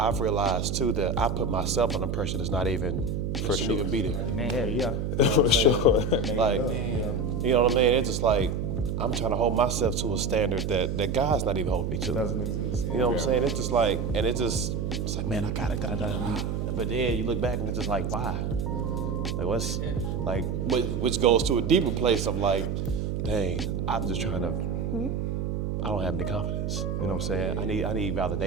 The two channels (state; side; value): noise; right; hum, 1 dB below the sound